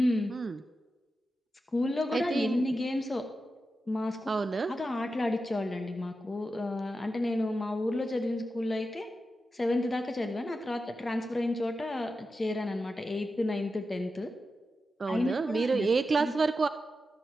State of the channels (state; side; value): normal; both; correlation 0.90